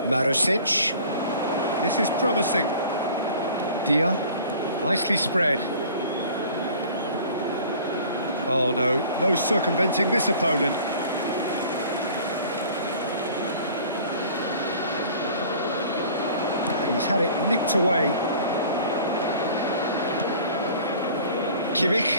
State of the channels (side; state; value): both; inverted; correlation -0.47